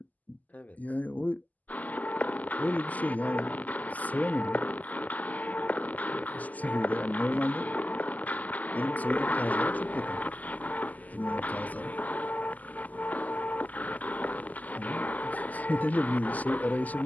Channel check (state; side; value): late; right; 0.079 ms